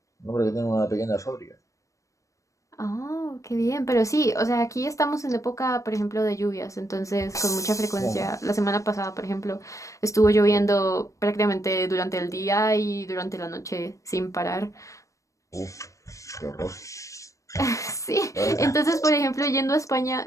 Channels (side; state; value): right; late; 0.15 ms